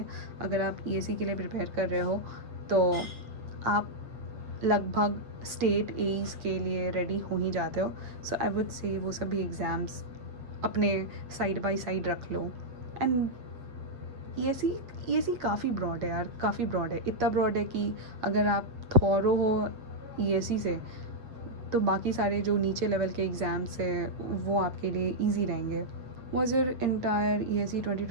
अगर आप ESE के लिए प्रिपेयर कर रहे हो तो आप लगभग स्टेट एज के लिए रेडी हो ही जाते हो। सो आई वुड से वो सभी एग्ज़ाम्स अपने साइड बाय साइड रख लो। एंड ESE काफ़ी ब्रॉड है यार, काफ़ी ब्रॉड है, इतना ब्रॉड है कि अगर आप थॉरो हो ESE से तो बाकी सारे जो नीचे लेवल के एग्ज़ाम्स हैं वो आपके लिए ईजी रहेंगे। Was your entire ESE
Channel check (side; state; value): left; late; 8.0 ms